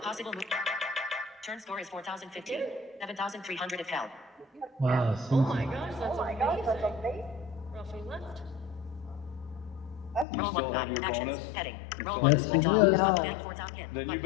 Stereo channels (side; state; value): right; drops out; at 10.2 s